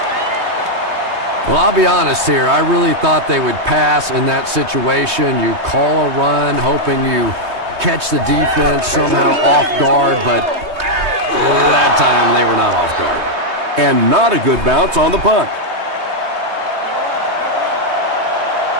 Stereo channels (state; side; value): late; left; 3.2 ms